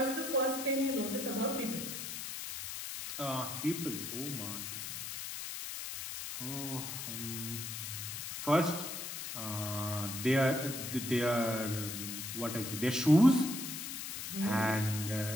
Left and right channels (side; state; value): left; noise; hiss, 6 dB below the sound